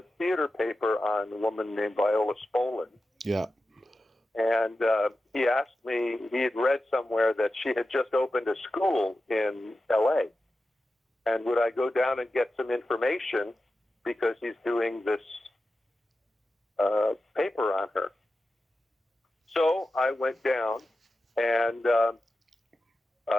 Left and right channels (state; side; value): normal; both; correlation 0.92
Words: theater paper on a woman named Viola Spolin. Yeah. And he asked me, he had read somewhere that she had just opened a school in L.A., and would I go down and get some information because he's doing this paper on her. So I went down, and